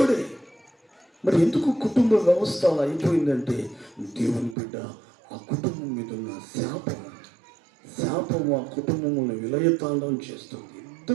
మరి ఎందుకు కుటుంబ వ్యవస్థ అలా అయిపోయిందంటే దేవుని బిడ్డ ఆ కుటుంబం మీద ఉన్న శాపం ఆ కుటుంబంలో విలయతాండం చేస్తుంది.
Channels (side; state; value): left; drops out; at 4.5 s